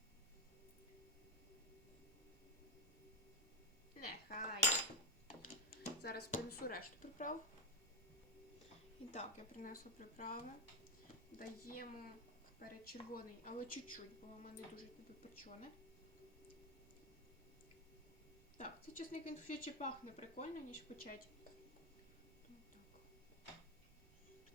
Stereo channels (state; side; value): noise; right; rumble, 22 dB below the sound